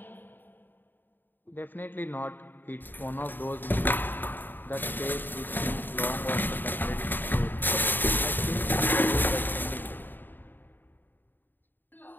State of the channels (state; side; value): late; right; 0.092 ms